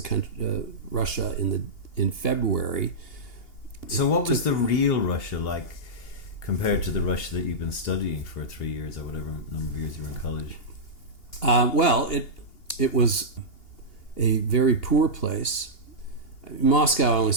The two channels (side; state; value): right; late; 2.8 ms